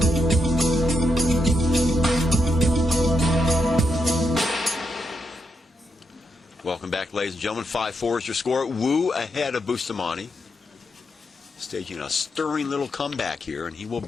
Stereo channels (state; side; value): normal; both; correlation 0.82